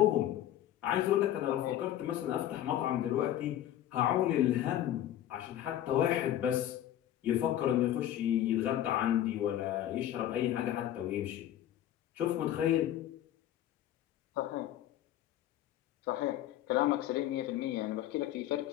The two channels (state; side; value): quieter; right; 12.1 dB